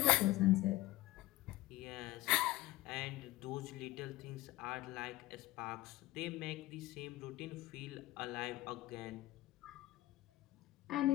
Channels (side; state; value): right; quieter; 17.4 dB